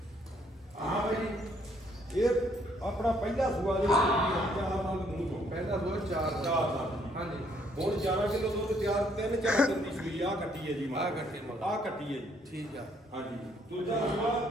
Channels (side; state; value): both; normal; correlation 0.68